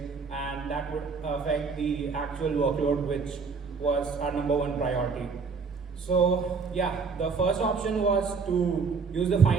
and that would affect the actual workload, which was our #1 priority. So yeah, the first option was to use the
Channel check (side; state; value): left; quieter; 5.1 dB